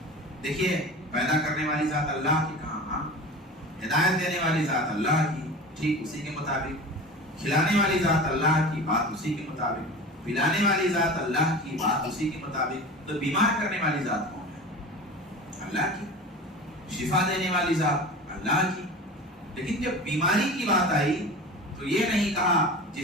دیکھیے, پیدا کرنے والی ذات اللہ کی کہاں, ہدایت دینے والی ذات اللہ کی, ٹھیک اسی کے مطابق کھلانے والی ذات اللہ کی, بات اسی کے مطابق پلانے والی ذات اللہ کی, بات اسی کے مطابق. تو بیمار کرنے والی ذات کون ہے؟ اللہ کی. شفا دینے والی ذات اللہ کی. لیکن جب بیماری کی بات آئی تو یہ نہیں کہا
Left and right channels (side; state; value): both; normal; correlation 0.34